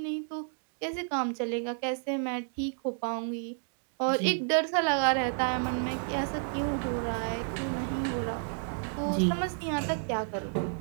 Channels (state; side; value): silent; left; 57 dB below the other